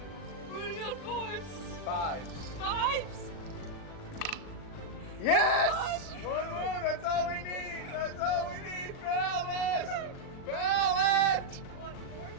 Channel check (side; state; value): right; late; 39 ms